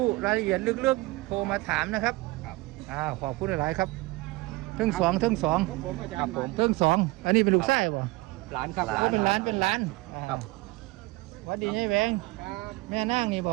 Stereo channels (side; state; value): left; quieter; 22.2 dB